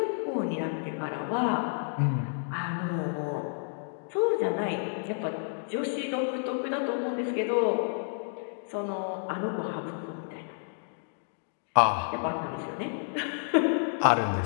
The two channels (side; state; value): right; silent; digital silence